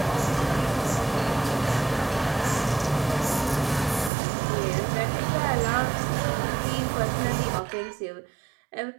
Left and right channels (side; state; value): left; drops out; at 4.1 s